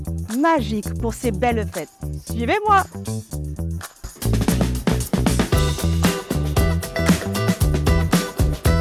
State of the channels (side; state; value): both; identical; correlation 1.00